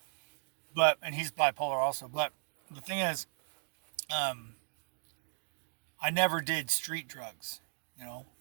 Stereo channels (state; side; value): silent; left; digital silence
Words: And he's bipolar also. But the thing is, um, I never did street drugs. You know,